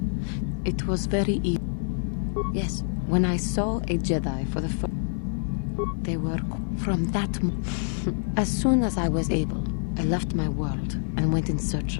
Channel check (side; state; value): right; silent; digital silence